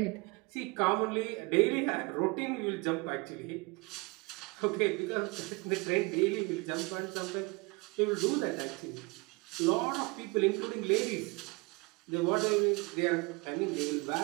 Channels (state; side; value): quieter; left; 26.7 dB